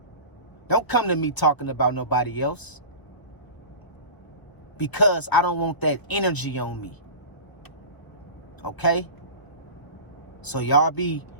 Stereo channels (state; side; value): late; right; 1.0 ms